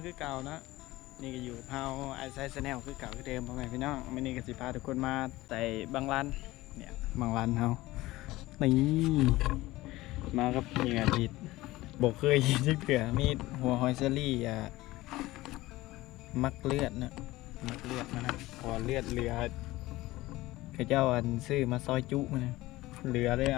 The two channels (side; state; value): right; quieter; 18.4 dB